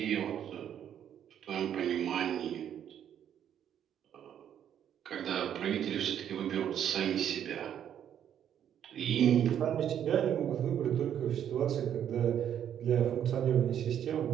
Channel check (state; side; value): quieter; left; 9.6 dB